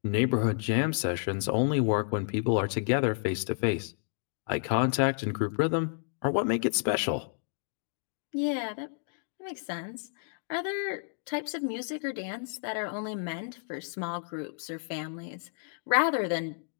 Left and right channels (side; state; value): right; silent; digital silence